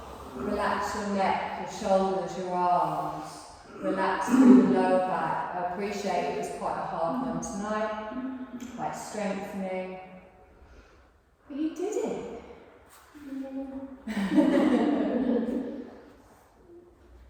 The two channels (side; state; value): both; identical; correlation 1.00